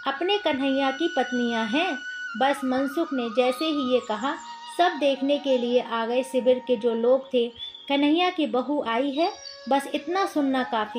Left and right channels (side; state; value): both; identical; correlation 1.00